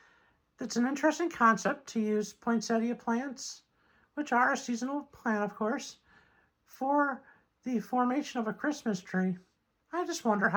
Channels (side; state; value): both; identical; correlation 1.00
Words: It's an interesting concept to use poinsettia plants, which are a seasonal plant, of course, for the formation of a Christmas tree. I just wonder